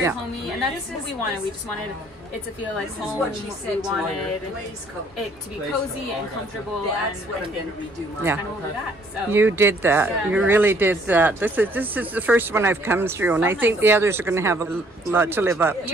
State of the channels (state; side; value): normal; both; correlation 0.62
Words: homey, and that's what we wanted. We just wanted it to feel like home. We wanted it to be cozy and comfortable, and kind of over that. So you did that. You really did that. This is the first one I've come through, and I think the others are going to have a lot to live up